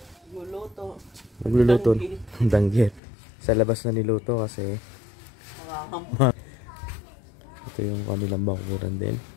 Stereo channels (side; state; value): right; drops out; at 3.0 s